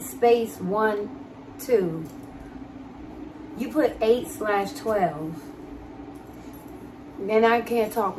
space 1 2. You put 8/12. And I can't talk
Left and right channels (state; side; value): identical; both; correlation 1.00